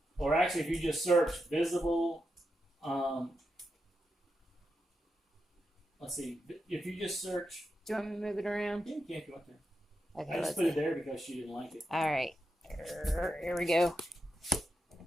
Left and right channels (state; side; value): normal; both; correlation 0.86